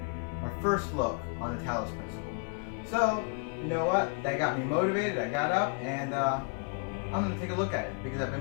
our first look on the Talos principle. So, you know what? That got me motivated. I got up and I'm going to take a look at it because I've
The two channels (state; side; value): quieter; right; 35.6 dB